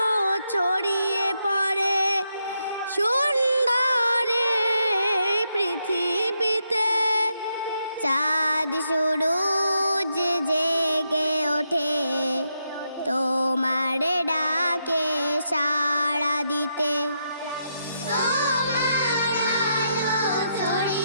ছড়িয়ে পড়ে সুন্দর এই পৃথিবীতে। চাঁদ সূরজ জেগে ওঠে তোমার ডাকে সাড়া দিতে। তোমার আলো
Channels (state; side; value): inverted; both; correlation -0.81